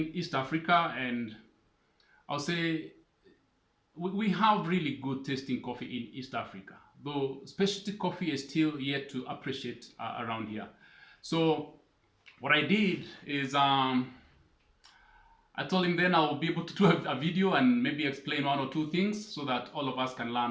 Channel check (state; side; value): identical; both; correlation 1.00